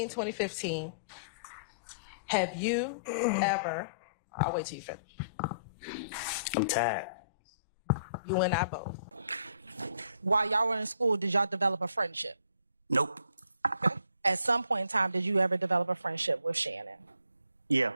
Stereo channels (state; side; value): inverted; both; correlation -0.62